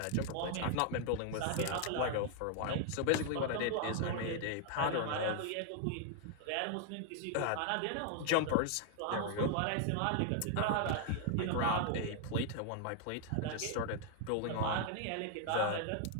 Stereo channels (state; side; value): different; both; correlation 0.00